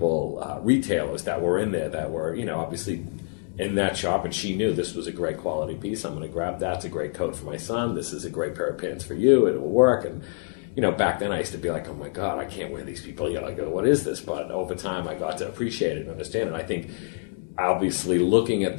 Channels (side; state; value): right; silent; digital silence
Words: retailers that were in there that were, obviously in that shop, and she knew this was a great quality piece. I'm going to grab that. It's a great coat for my son. This is a great pair of pants for you. It will work. And, back then I used to be like, oh my God, I can't wear these people. I go, what is this? But over time I got to appreciate it and understand it. I think obviously looking at